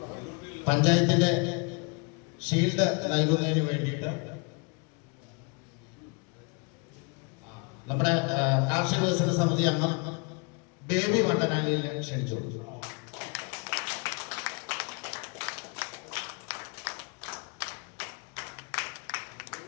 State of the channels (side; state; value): right; quieter; 33.9 dB